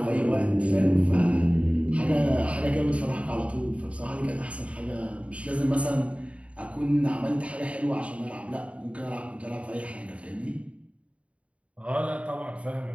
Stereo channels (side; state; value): left; late; 0.063 ms